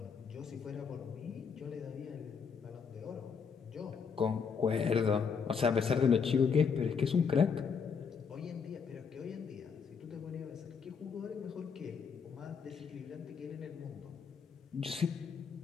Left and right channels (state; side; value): quieter; right; 6.2 dB